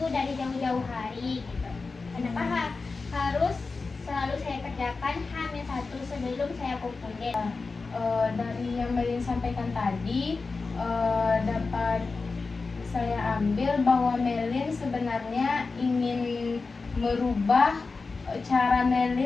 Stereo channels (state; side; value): quieter; right; 4.1 dB